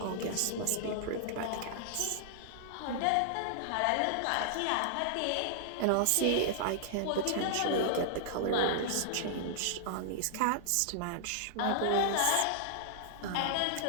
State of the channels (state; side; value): different; both; correlation -0.01